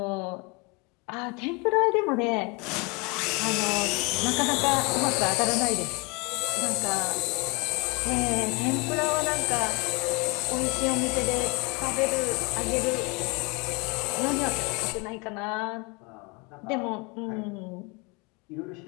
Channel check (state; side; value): quieter; right; 28.1 dB